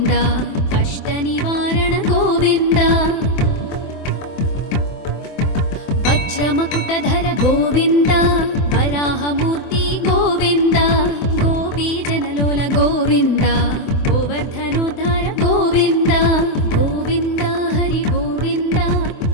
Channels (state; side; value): late; right; 24 ms